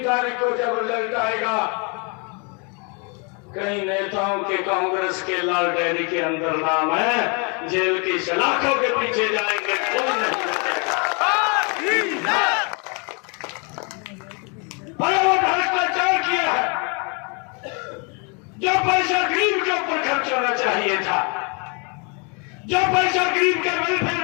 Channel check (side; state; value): right; quieter; 34.1 dB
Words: तारीख को जब रिजल्ट आएगा, कई नेताओं के कांग्रेस के लाल डायरी के अंदर नाम है, जेल की सलाखों के पीछे जाएंगे, कोई नहीं बचेगा। वो भ्रष्टाचार किया है, जो पैसा गरीब के ऊपर खर्च होना चाहिए था, जो पैसा गरीब के वेलफेयर